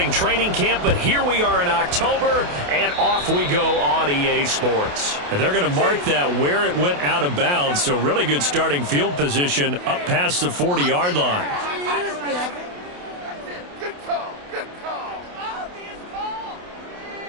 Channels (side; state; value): left; late; 28 ms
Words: training camp, but here we are in October, and off we go on EA Sports. And they're going to mark that where it went out of bounds, so really good starting field position up past the 40-yard line. Good call. Good call. Obvious call.